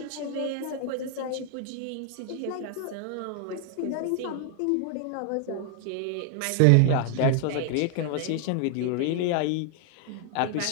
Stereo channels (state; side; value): different; both; correlation 0.00